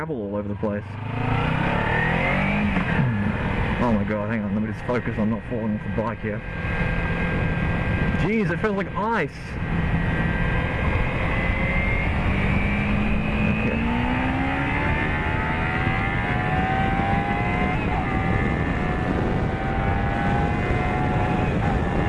all over the place. Oh my god, hang on, let me just focus on not falling off the bike here. Jeez, it feels like ice!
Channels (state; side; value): identical; both; correlation 1.00